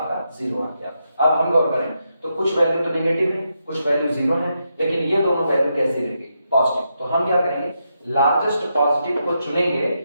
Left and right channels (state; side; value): inverted; both; correlation -0.83